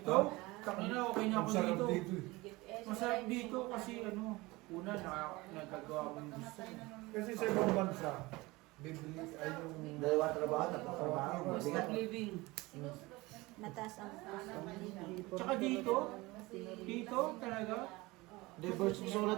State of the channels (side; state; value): left; quieter; 21.9 dB